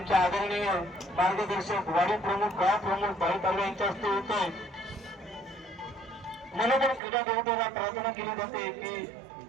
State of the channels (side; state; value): left; drops out; at 7.0 s